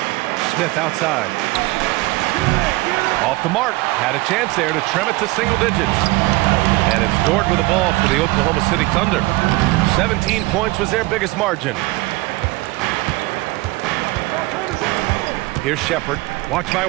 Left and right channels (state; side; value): quieter; left; 21.5 dB